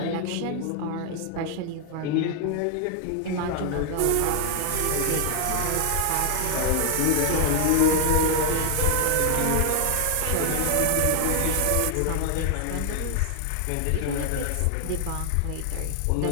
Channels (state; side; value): different; both; correlation 0.00